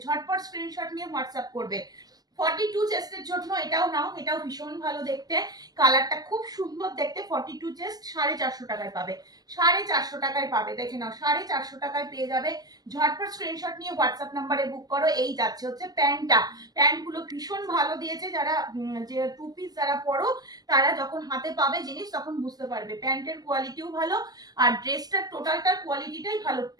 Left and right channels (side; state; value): left; late; 0.19 ms